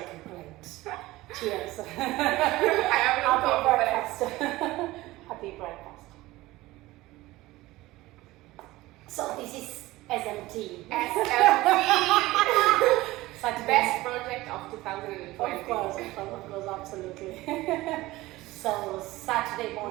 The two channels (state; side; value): quieter; left; 18.5 dB